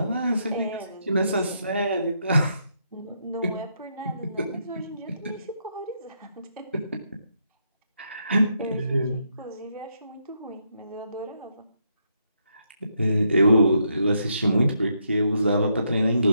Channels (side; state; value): both; inverted; correlation -0.78